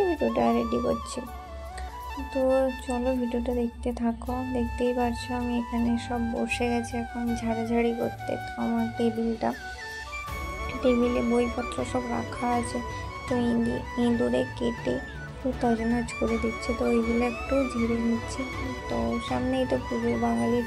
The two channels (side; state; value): both; identical; correlation 1.00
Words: ভিডিওটা রেডি করছি। তো চলো ভিডিওটা দেখতে থাকো। দেখতেই পারছো আমি এখানে সব বসে গেছি এখন ঝাড়াঝাড়ি করতে। তো আমার টেবিলে বইপত্র সব রাখা আছে, তো ইঁদুরে কেটে তছনছ করে দিচ্ছে, তো ওইগুলো একটু ঝেড়ে নিচ্ছি। তো সামনেই তো পুজো, বাঙালির